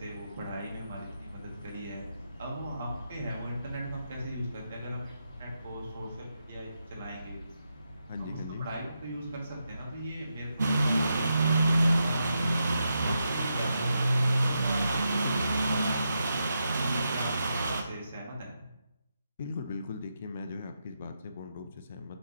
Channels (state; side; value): inverted; both; correlation -0.85